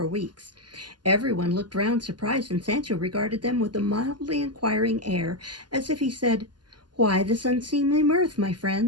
weeks. Everyone looked round surprised, and Sancho regarded them with a mildly inquiring air, as if he said, "Why this unseemly mirth, my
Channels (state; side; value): late; left; 0.70 ms